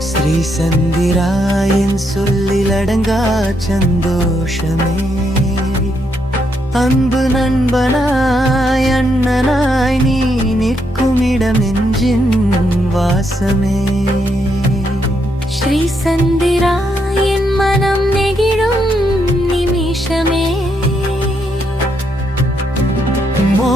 ஸ்ரீ சந்திராயன் சொல்லில் அடங்கா சந்தோஷமே. அன்பு நண்பனாய் அண்ணனாய் நீ நிற்கும் இடம் நெஞ்சின் வாசமே. ஸ்ரீ சந்திராயன் மனம் நெகிழும் நிமிஷமே.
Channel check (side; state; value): both; normal; correlation 0.78